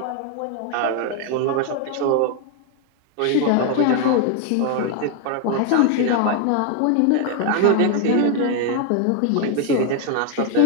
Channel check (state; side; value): different; both; correlation 0.00